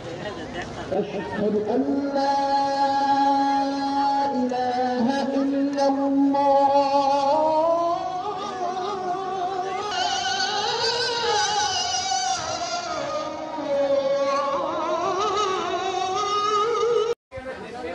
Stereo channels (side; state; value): both; identical; correlation 1.00